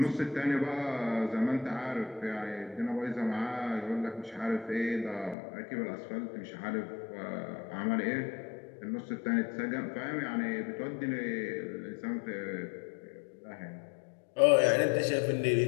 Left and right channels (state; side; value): drops out; right; at 5.4 s